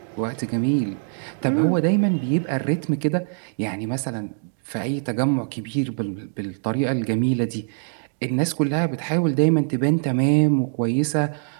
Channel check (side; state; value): left; silent; digital silence